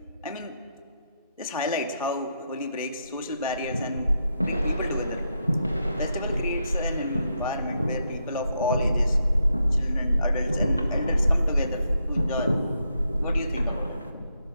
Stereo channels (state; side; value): inverted; both; correlation -0.81